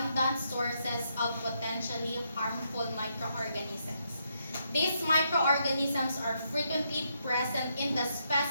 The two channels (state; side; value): inverted; both; correlation -0.78